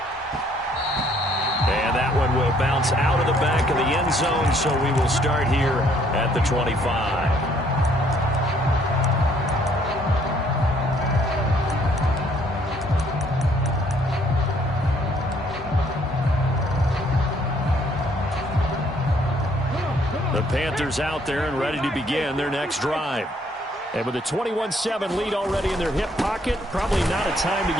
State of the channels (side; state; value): both; normal; correlation 0.65